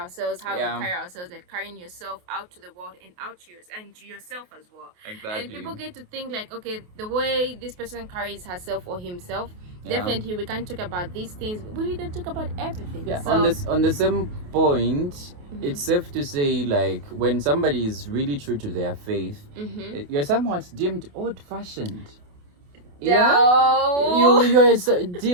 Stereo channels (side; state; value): left; late; 28 ms